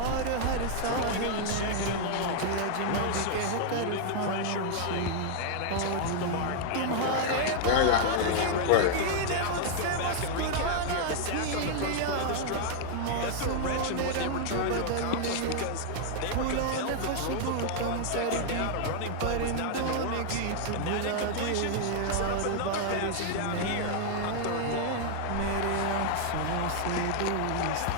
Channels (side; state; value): both; different; correlation -0.01